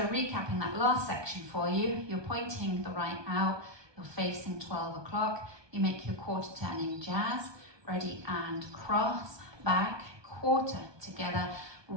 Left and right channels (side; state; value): left; late; 1.2 ms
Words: recapping that last section for you, you're pointing the right out, you're facing 12 o'clock, you make your quarter turning jazz, ready and cross, back, quarter together,